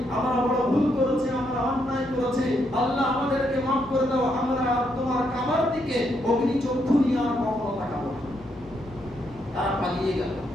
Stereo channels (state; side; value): noise; left; hum, 21 dB below the sound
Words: আমরা বড় ভুল করেছি, আমরা অন্যায় করেছি, আল্লাহ আমাদেরকে মাফ করে দাও, আমরা আর তোমার কাবার দিকে অগ্নি চক্ষু নিয়ে আর কখনো তাকাবো না। তারা পালিয়ে গেল।